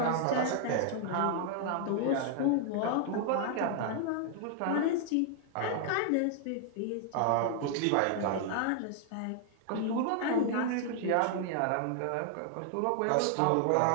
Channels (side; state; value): both; different; correlation 0.00